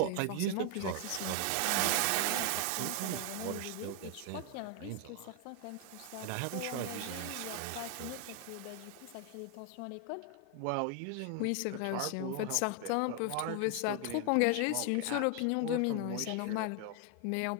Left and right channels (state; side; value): different; both; correlation 0.00